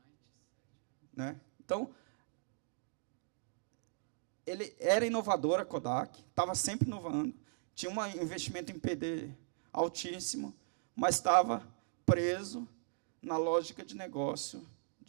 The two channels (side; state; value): left; silent; digital silence